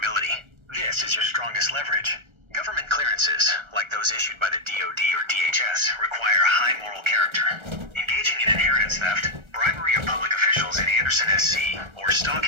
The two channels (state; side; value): late; left; 1.3 ms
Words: This is your strongest leverage. Government clearances, like those issued by the DoD or DHS, require high moral character. Engaging in inheritance theft, bribery of public officials in Anderson SC, or